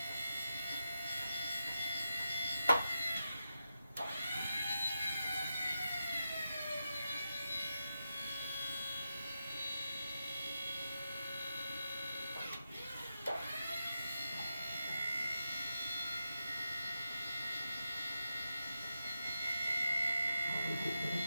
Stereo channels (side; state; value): both; inverted; correlation -0.89